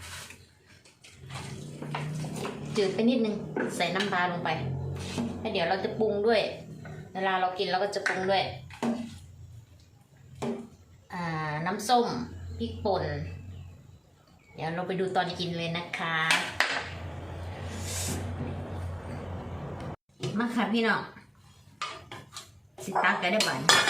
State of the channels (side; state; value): both; identical; correlation 1.00